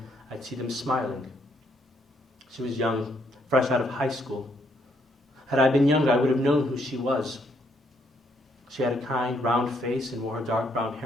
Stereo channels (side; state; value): both; normal; correlation 0.72